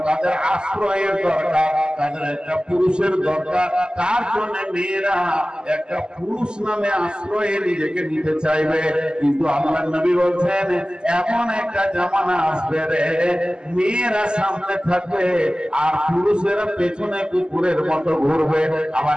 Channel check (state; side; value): late; left; 0.047 ms